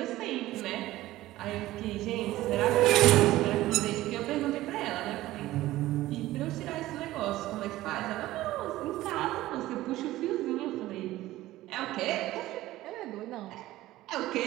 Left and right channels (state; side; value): quieter; left; 16.2 dB